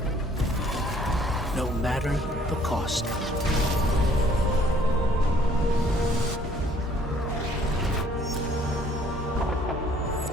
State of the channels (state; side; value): normal; both; correlation 0.60